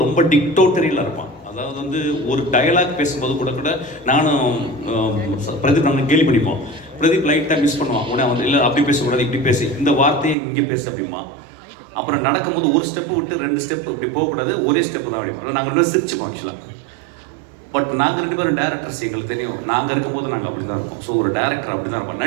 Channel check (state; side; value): drops out; left; at 10.4 s